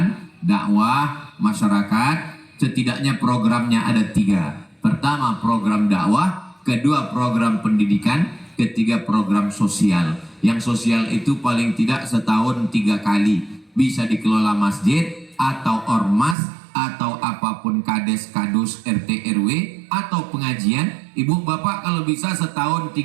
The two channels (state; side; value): drops out; left; at 16.4 s